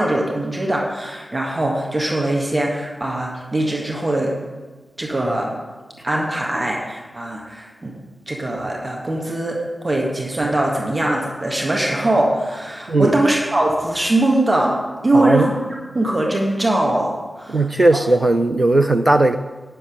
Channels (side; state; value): both; normal; correlation 0.93